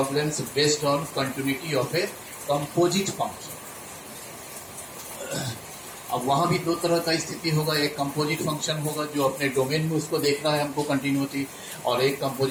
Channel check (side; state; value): both; identical; correlation 1.00